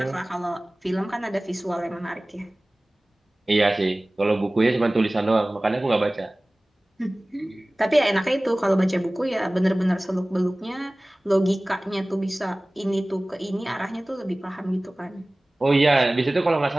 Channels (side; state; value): both; normal; correlation 0.98